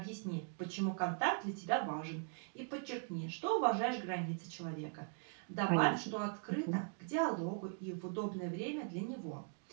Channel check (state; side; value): silent; left; 51 dB below the other